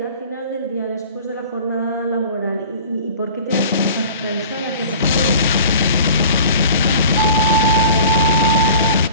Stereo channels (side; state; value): both; inverted; correlation -0.43